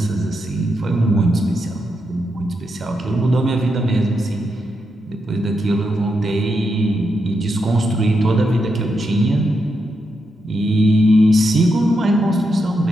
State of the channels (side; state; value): both; normal; correlation 0.84